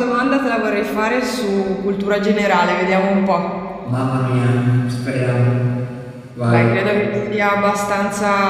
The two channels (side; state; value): both; identical; correlation 1.00